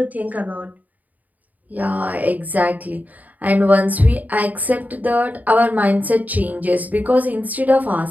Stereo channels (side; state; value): left; late; 0.078 ms